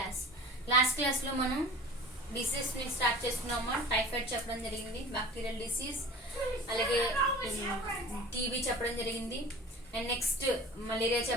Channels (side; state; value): both; normal; correlation 0.40